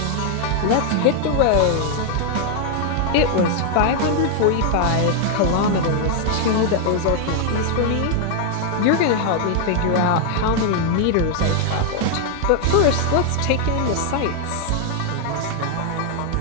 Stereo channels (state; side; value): different; both; correlation 0.00